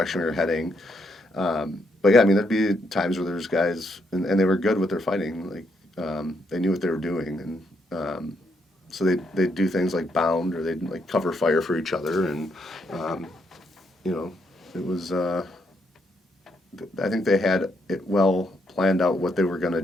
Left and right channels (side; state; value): both; normal; correlation 0.76